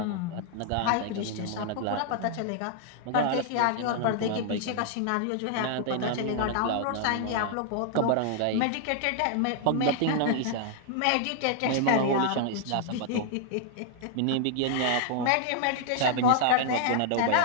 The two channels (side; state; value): both; different; correlation 0.00